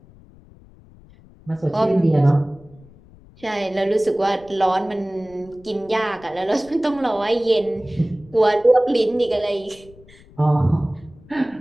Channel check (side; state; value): left; noise; rumble, 25 dB below the sound